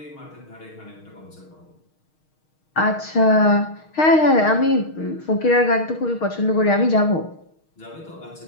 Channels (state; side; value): late; right; 6.4 ms